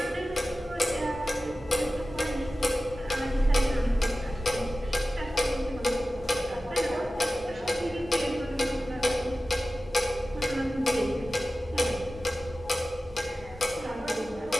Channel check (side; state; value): both; normal; correlation 0.95